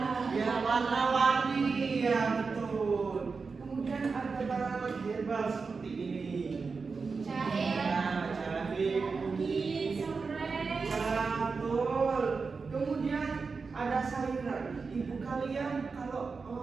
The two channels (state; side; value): quieter; left; 4.7 dB